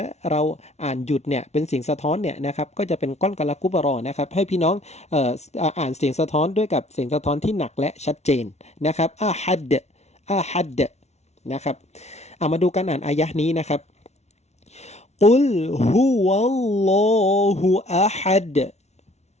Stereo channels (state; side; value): late; right; 0.32 ms